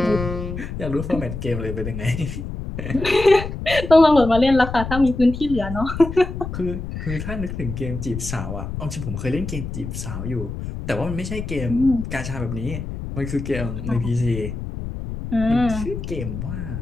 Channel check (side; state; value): left; noise; rumble, 7 dB below the sound